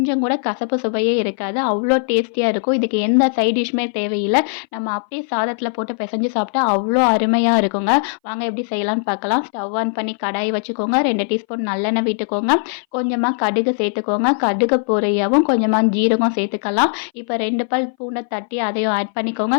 கூட கசப்பு சுவையே இருக்காது. அவ்ளோ டேஸ்டியா இருக்கும். இதுக்கு எந்த சைட் டிஷ்மே தேவையில்ல. நம்ம அப்படியே சாதத்தில போட்டு பெசஞ்சு சாப்பிட்டா அவ்ளோ அருமையா இருக்குங்க. வாங்க எப்படி செய்யலாம்னு பார்க்கலாம். ஸ்டவ் ஆன் பண்ணி கடாய் வச்சுக்கோங்க. 2 டீஸ்பூன் நல்லெண்ணெய் விட்டுக்கோங்க. கொஞ்சமா கடுகு சேர்த்துக்கோங்க. கடுகு பொரியவும் கொஞ்சமா ஜீரகம் சேர்த்துக்கலாம். இப்போ 2 பல் பூண்டை தட்டி அதையும் ஆட் பண்ணிக்கோங்க.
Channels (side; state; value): right; silent; 61 dB below the other